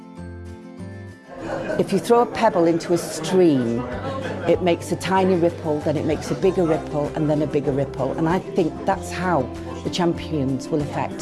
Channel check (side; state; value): both; identical; correlation 1.00